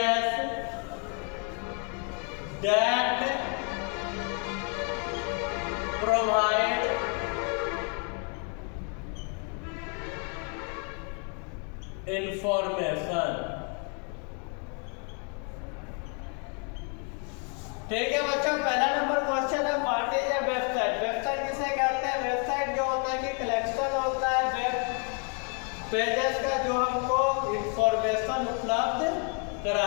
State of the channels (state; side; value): quieter; right; 39.1 dB